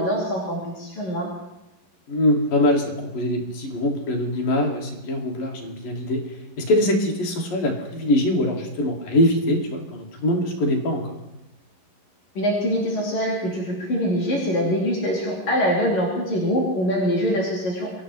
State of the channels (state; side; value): late; right; 11 ms